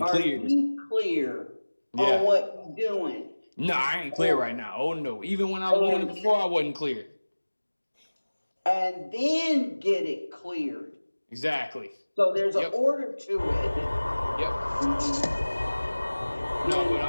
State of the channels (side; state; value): both; inverted; correlation -1.00